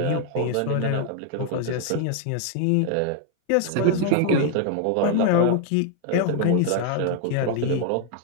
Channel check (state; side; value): different; both; correlation 0.00